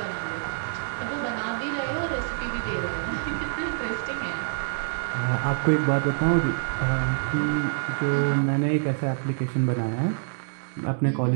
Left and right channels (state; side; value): silent; left; digital silence